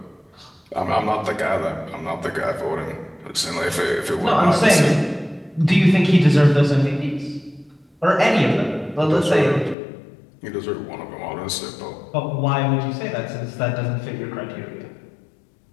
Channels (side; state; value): right; drops out; at 9.8 s